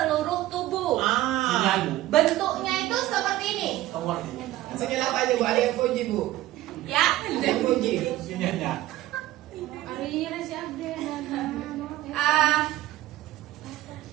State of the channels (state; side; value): quieter; left; 15.6 dB